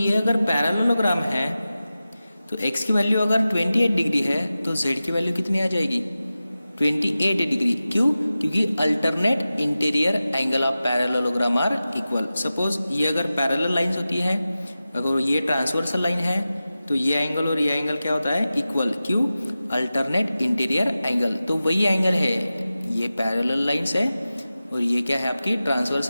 अगर पैरेललोग्राम है तो x की वैल्यू अगर 28 डिग्री है तो z की वैल्यू कितनी आ जाएगी, 28 डिग्री। क्यों? क्योंकि alternate interior angle of parallelogram are equal. Suppose ये अगर पैरेलल लाइंस होती है, अगर ये ट्रांसवर्सल लाइन है तो ये एंगल और ये एंगल क्या होता है, इक्वल। क्यों? Alternate interior angle. तो वही एंगल है, ये पैरेलल लाइंस है और ये क्या है आपकी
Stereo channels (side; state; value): both; inverted; correlation -0.95